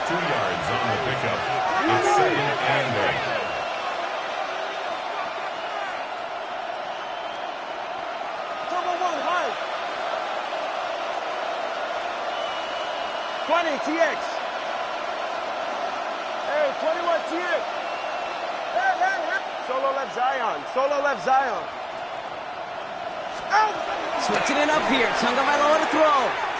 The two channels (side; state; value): both; identical; correlation 1.00